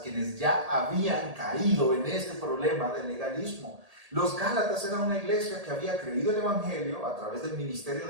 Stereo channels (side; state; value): left; late; 1.8 ms